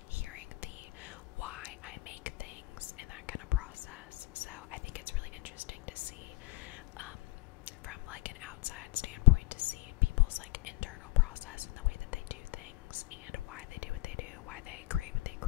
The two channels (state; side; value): quieter; right; 19.5 dB